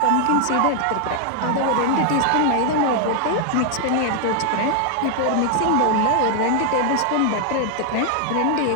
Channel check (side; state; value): both; different; correlation 0.00